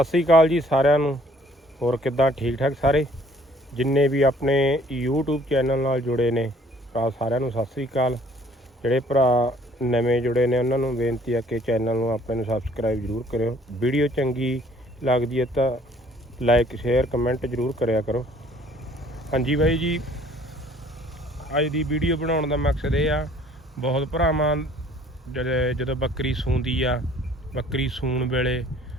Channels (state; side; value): normal; both; correlation 0.58